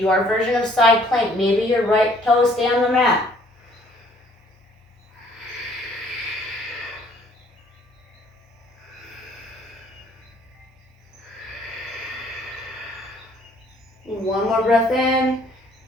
version of side plank. Maybe your right toes stay on the mat. One more breath in.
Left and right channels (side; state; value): both; normal; correlation 0.60